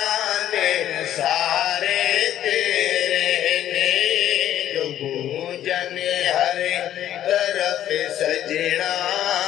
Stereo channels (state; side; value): quieter; right; 11.6 dB